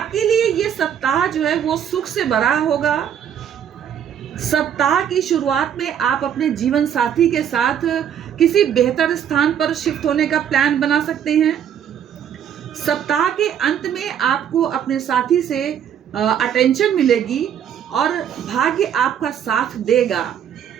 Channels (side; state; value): left; quieter; 9.0 dB